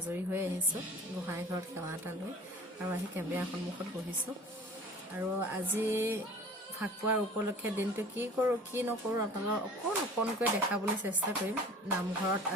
হৈ আহিছো গোহাঁই ঘৰত সেৱা এটা লৈ আৰু আহি কেমেৰা সন্মুখত বহিছো আৰু আজি ফাকুৱাৰ উপলক্ষে দিনটো কি কৰো কি নকৰো আপোনালোকক অকণকৈ দেখাবলৈ চেষ্টা কৰিম নামঘৰত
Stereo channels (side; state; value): both; normal; correlation 0.44